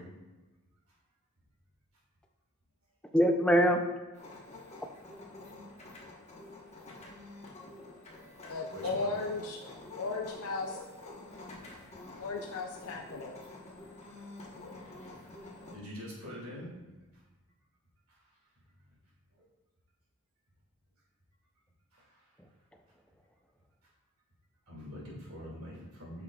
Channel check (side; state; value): both; normal; correlation 0.49